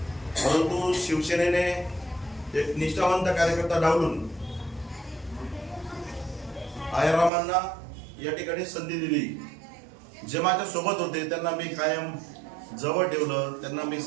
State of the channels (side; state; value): left; drops out; at 7.3 s